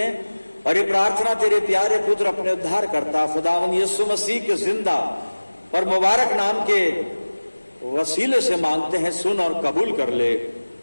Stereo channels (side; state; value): both; inverted; correlation -1.00